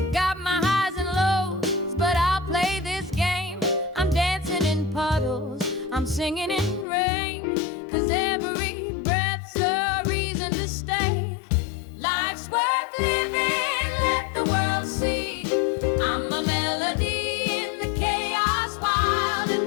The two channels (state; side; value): drops out; right; at 6.9 s